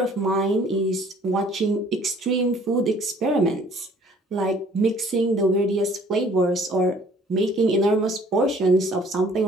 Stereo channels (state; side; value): normal; both; correlation 0.55